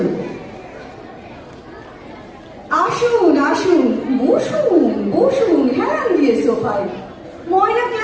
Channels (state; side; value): identical; both; correlation 1.00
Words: আসুন আসুন, বসুন বসুন হেলান দিয়ে সোফায়। ময়লা